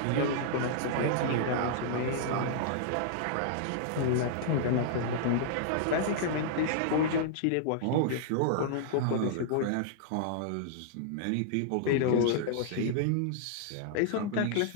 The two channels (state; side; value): different; both; correlation -0.01